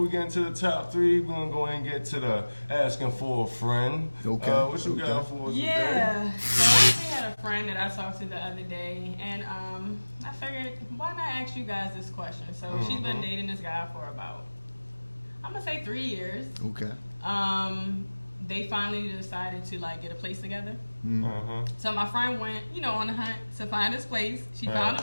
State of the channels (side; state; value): both; inverted; correlation -1.00